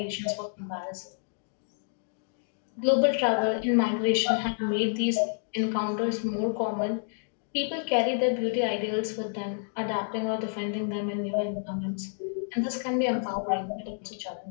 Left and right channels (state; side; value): silent; right; digital silence